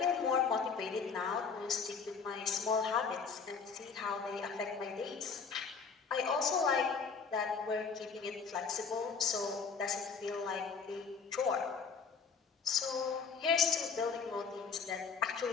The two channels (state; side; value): quieter; right; 5.6 dB